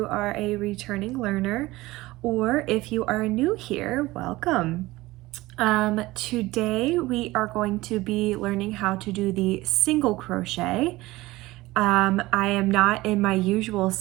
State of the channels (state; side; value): quieter; left; 19.1 dB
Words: are a returning learner or if you are new here, welcome. Today we are going to be learning how to do the single crochet. I am not in my usual